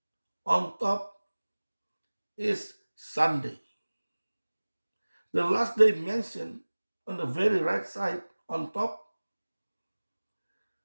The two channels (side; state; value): both; inverted; correlation -1.00